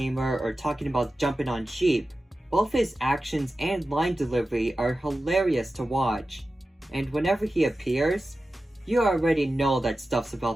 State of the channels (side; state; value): both; normal; correlation 0.94